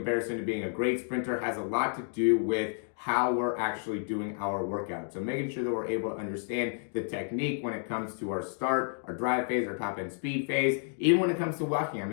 to being a great sprinter has a lot to do with how we're actually doing our workout. So making sure that we're able to understand the technique when it comes to our start, our drive phase, our top end speed phase, even when it comes to walking. I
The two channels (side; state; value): right; silent; 57 dB below the other